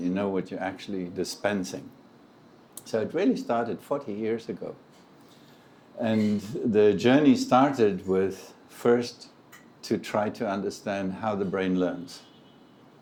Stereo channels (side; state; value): both; identical; correlation 1.00